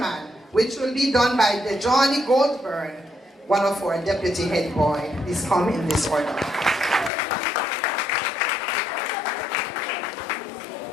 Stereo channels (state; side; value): drops out; right; at 7.1 s